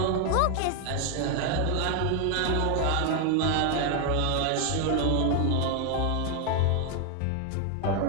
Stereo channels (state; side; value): different; both; correlation 0.01